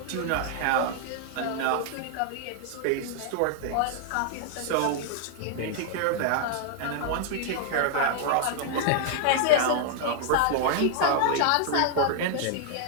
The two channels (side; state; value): both; different; correlation -0.01